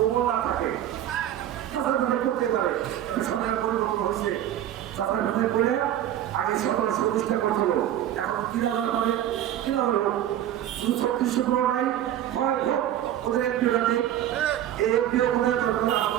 না থাকে। তাছাড়া মনে করতে পারে সরকার পরিবর্তন হয়েছে, তাছাড়া মনে করে আগে সরকার প্রতিষ্ঠা করছিল, এখন 3000 মানে 3000 লোক 3600 নাই হয় হোক ওদের এমপিওটা নেই, এই এমপিও মনে হয়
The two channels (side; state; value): left; quieter; 11.7 dB